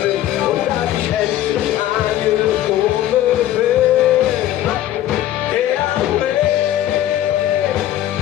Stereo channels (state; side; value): quieter; right; 13.0 dB